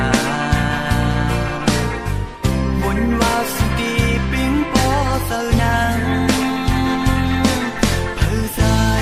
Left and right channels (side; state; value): both; identical; correlation 1.00